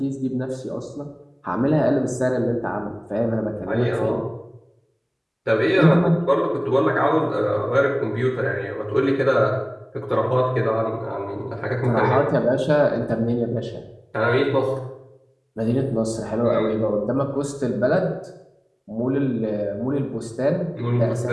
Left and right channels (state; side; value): identical; both; correlation 1.00